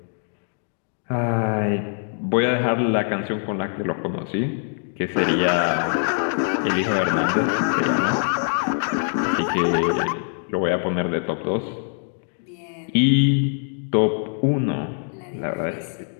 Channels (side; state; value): right; silent; 62 dB below the other